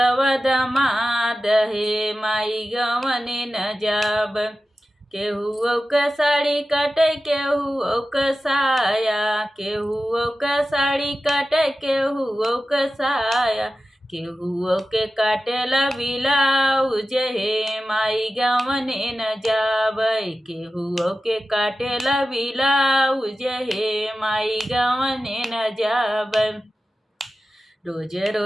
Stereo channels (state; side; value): normal; both; correlation 0.94